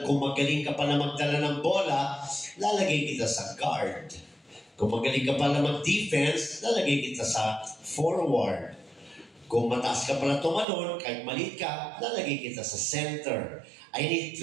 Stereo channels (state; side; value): drops out; left; at 10.7 s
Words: magaling ka pa na magdala ng bola, lalagay kita sa guard. Kung magaling ka pa na mag-defense, lalagay kita sa forward. Kung mataas ka pala tumalon, kahit maliit ka, lalagay kita sa center. I need